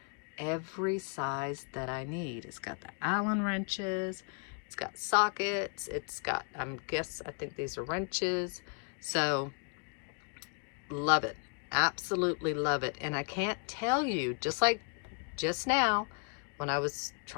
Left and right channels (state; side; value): quieter; right; 38.6 dB